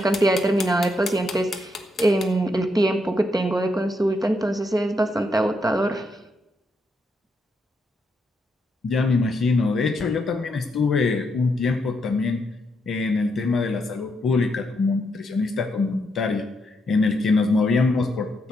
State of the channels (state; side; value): normal; both; correlation 0.79